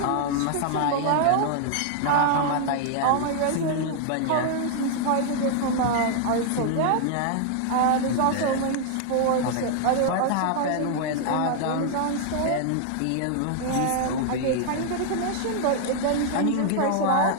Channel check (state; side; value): different; both; correlation 0.00